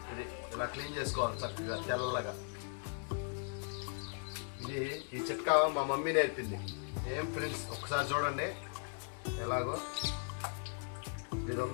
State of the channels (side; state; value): right; silent; 52 dB below the other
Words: ఇది ఇలా క్లీన్ చేసుకోవాలి చక్కగా తెల్లగా. ఇది ఈ చిట్కా మా మమ్మీ నేర్పింది. ఏం ఫ్రెండ్స్, ఒకసారి చూడండి ఎలాగో. ఇది